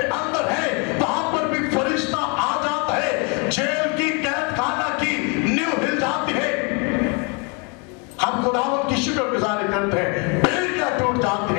अंदर है, वहां पर भी फरिश्ता आ जाता है, जेल की कैद खाना की नींव हिल जाती है। हम खुदावंद की शुक्रगुजारी करते हैं, बेड़ियां टूट जाती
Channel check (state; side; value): quieter; right; 33.3 dB